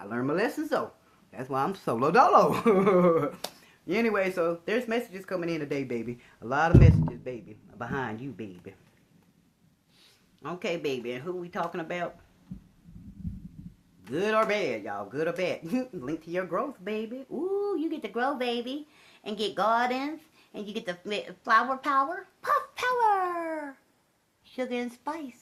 learned my lessons, though. That's why I'm solo dolo. Anyway, so there's messages coming in today, baby. A lot of messages, baby. Behind you, baby. Okay, baby, and who we talking about? Good or bad, y'all? Good or bad? Link to your growth, baby. Ooh, you get to grow, baby. And get gardens. And you get the flower power. Puff power! Sugar and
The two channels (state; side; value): identical; both; correlation 1.00